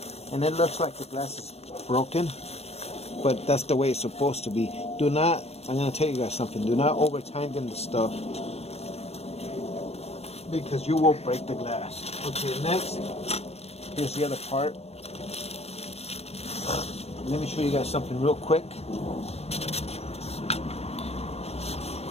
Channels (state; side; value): late; right; 0.30 ms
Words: And it looks like the glass is broken, but that's the way it's supposed to be. Do not, I'm gonna tell you guys something, do not over tighten the stuff, because you will break the glass. Okay, next, here's the other part. Let me show you guys something real quick.